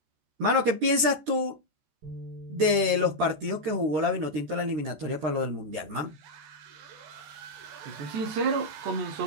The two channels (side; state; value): left; late; 14 ms